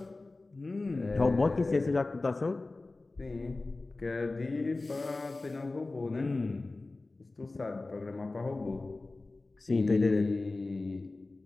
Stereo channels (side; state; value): right; quieter; 3.3 dB